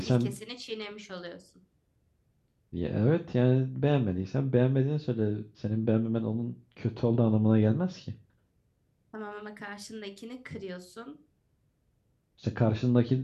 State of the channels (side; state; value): both; identical; correlation 1.00